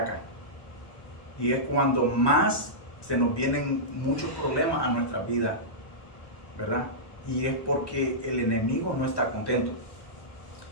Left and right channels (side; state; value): right; late; 1.1 ms